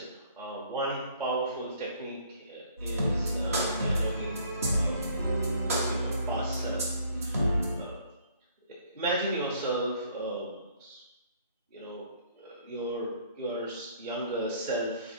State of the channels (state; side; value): inverted; both; correlation -0.60